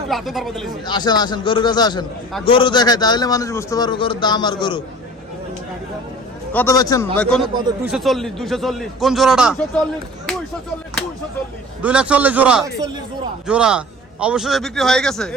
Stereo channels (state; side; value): normal; both; correlation 0.42